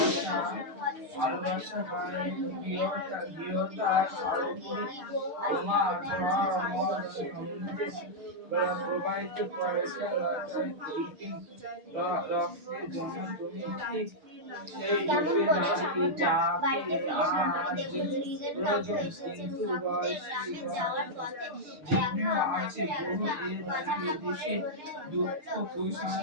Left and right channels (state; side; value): late; left; 6.6 ms